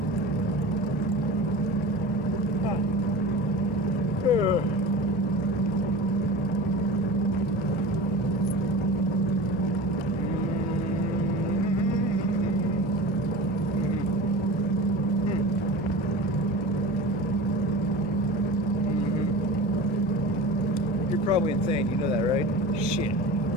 You're probably insane, you know that, right? Shit.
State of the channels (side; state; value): both; normal; correlation 0.33